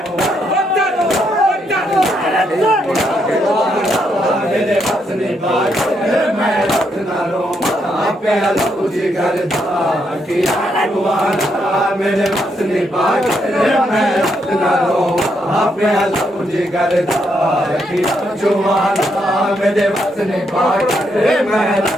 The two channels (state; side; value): normal; both; correlation 0.77